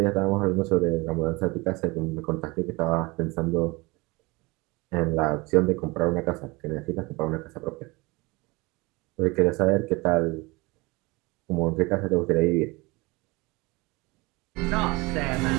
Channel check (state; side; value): quieter; left; 24.5 dB